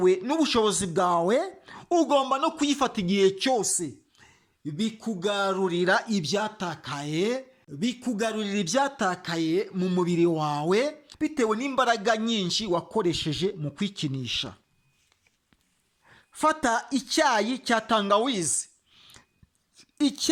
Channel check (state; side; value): identical; both; correlation 1.00